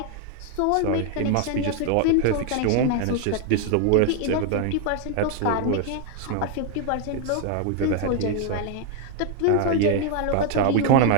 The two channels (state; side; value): different; both; correlation 0.00